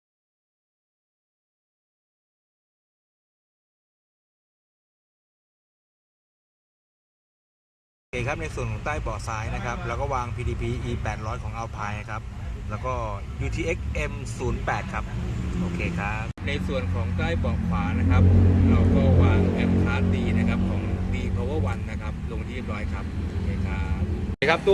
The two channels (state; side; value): identical; both; correlation 1.00